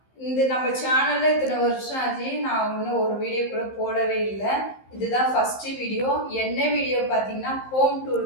இந்த நம்ம சேனல்ல இத்தனை வருஷம் ஆச்சு, நான் இன்னும் ஒரு வீடியோ கூட போடவே இல்லை. இதுதான் ஃபர்ஸ்ட் வீடியோ. என்ன வீடியோ பார்த்தீங்கன்னா, ஹோம் டூர்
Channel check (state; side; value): late; right; 15 ms